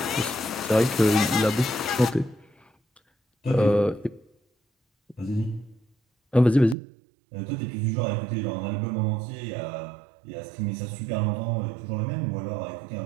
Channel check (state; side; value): drops out; left; at 6.8 s